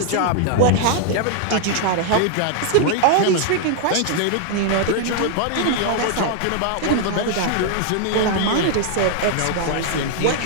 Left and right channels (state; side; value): different; both; correlation 0.00